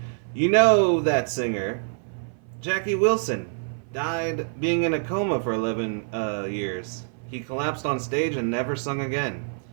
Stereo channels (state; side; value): silent; left; 57 dB below the other